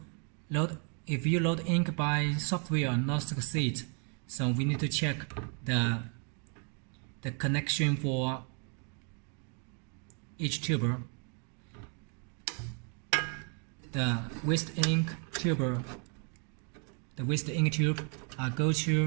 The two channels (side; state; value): left; quieter; 39.1 dB